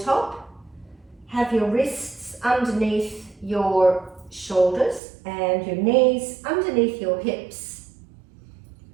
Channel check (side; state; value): left; drops out; at 5.0 s